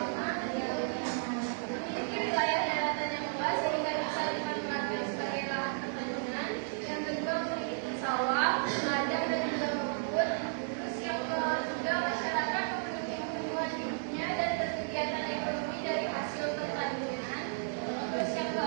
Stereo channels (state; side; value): silent; left; digital silence